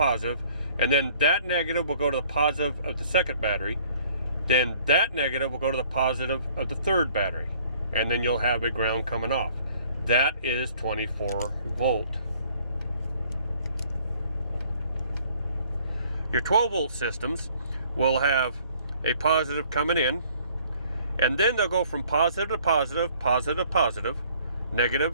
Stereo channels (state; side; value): inverted; both; correlation -0.57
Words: and then that negative will go to the positive of the second battery. Then that negative will go to the positive of the third battery. And then you'll have a ground coming off. That is 24 volt. Your 12 volt systems will have a positive coming in, and then they'll go from positive to positive, positive to positive,